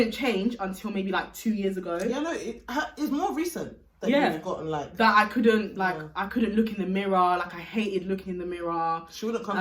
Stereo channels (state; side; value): identical; both; correlation 1.00